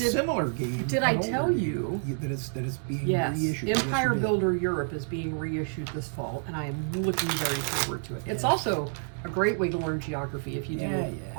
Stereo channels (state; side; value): silent; left; 59 dB below the other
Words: game. Did I an older tell game, you that it's being Yes, reissued? Empire Yes, you did. Builder Europe is being reissued this fall, and I am looking very forward to it. It's Yeah. also a great way to learn geography if you do Yeah,